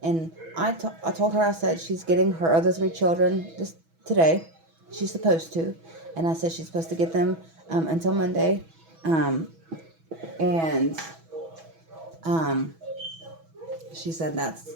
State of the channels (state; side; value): late; left; 6.1 ms